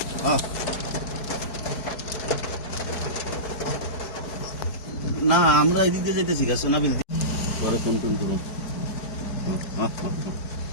না আমরা এদিক দিয়ে যেতেছি গা সোনাবিল পরে ফোন টোন করুন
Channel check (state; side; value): late; right; 4.7 ms